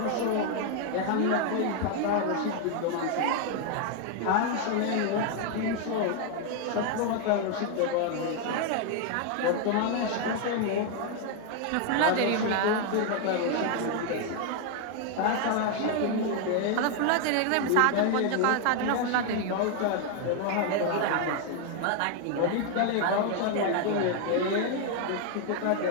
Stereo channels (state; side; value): different; both; correlation 0.01